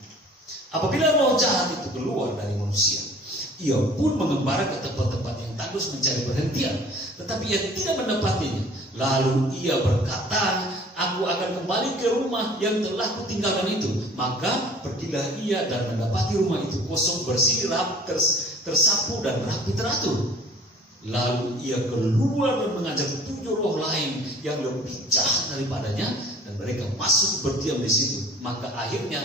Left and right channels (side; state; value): both; normal; correlation 0.49